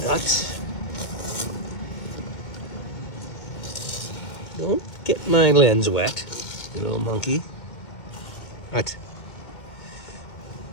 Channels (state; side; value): late; right; 2.1 ms